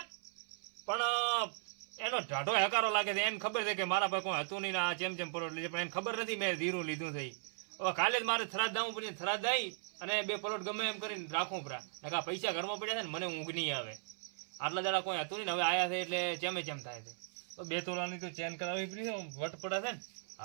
પણ એનો ઢાઢો હકારો લાગે છે એને ખબર છે કે મારા પાસે કોઈ હતું નહીં આ ચેમ પલોટ લીધે પણ એને ખબર નથી મેં ધીરું લીધું થઈ હવે કાલે જ મારે થરાદ દાવું પડે થરાદ દઈ અને 2 પ્લોટ ગમે એમ કરીને રાખવું પરા નકા પૈસા ઘરમાં પડ્યા છે ને મને ઊંઘ નહીં આવે આટલા દાડા કોઈ હતું નહીં હવે આયા છે એટલે ચેમ થાય છે તો 2 તોલાની તો ચેન કરાવવી પડી છે વટ પડે છે ને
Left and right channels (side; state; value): left; silent; 53 dB below the other